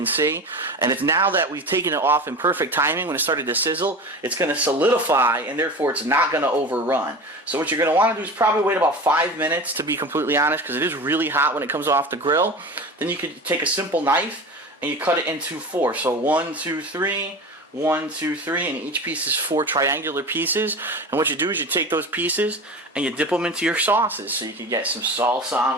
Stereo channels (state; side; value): normal; both; correlation 0.31